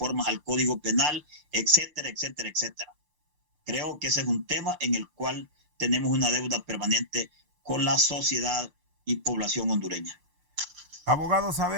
al Código Penal, etcétera, etcétera, etcétera. Creo que ese es un tema en el cual tenemos una deuda permanente con la sociedad y población hondureña. Abogado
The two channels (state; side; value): late; left; 6.7 ms